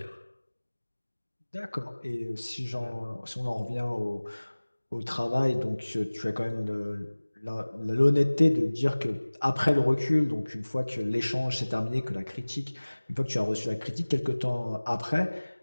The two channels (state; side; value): inverted; both; correlation -1.00